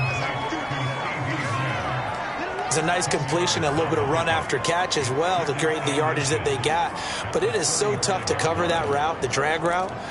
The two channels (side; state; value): both; identical; correlation 1.00